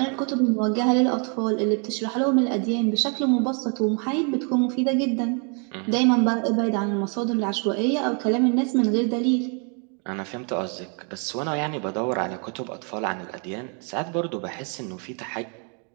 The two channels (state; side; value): quieter; left; 37.6 dB